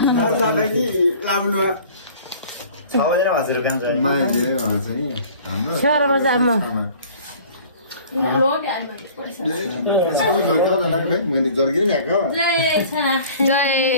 नर्साले कि लाउनु सबैले हजुर काम छ मान्छे भन्छ नि हाम्रो छोरा बजारमा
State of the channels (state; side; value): inverted; both; correlation -0.48